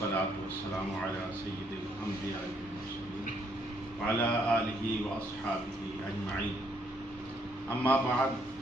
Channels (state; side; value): normal; both; correlation 0.70